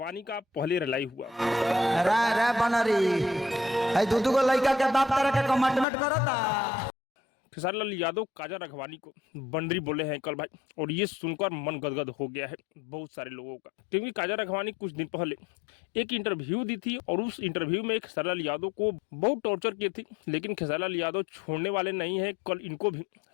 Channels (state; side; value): drops out; right; at 5.9 s